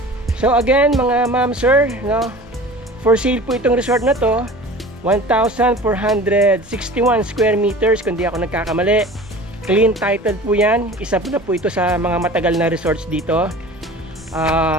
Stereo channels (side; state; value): both; normal; correlation 0.40